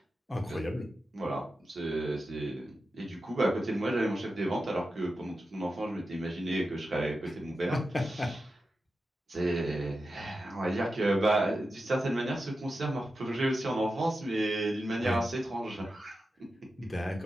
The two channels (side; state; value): both; normal; correlation 0.91